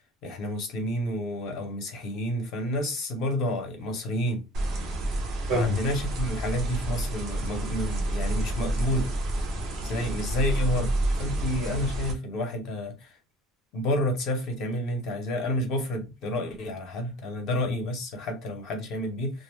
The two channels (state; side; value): normal; both; correlation 0.47